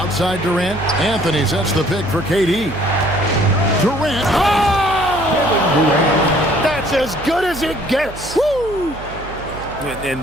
Durant. Anthony sets the pick for KD. Durant. Oh! That's as good as it gets. Woo! And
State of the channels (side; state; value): right; noise; hum, 14 dB below the sound